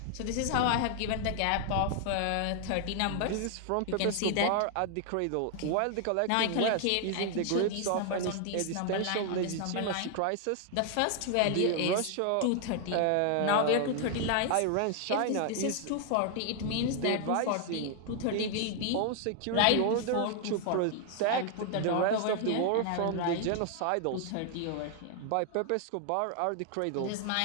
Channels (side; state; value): both; different; correlation 0.00